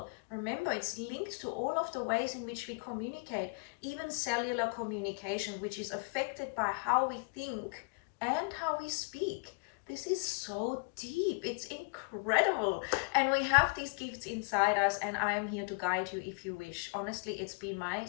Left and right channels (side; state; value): right; quieter; 36.6 dB